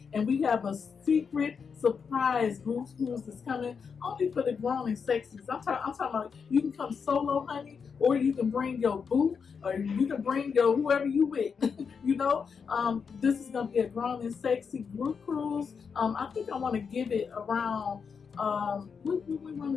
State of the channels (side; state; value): right; quieter; 6.0 dB